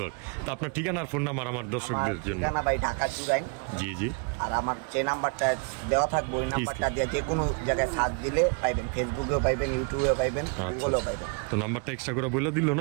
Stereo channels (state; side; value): quieter; left; 36.1 dB